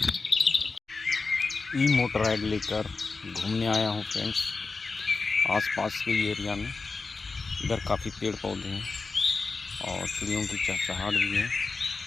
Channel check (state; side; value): quieter; right; 4.1 dB